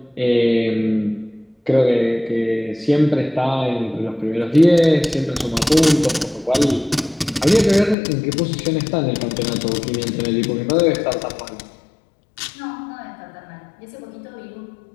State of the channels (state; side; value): drops out; right; at 8.0 s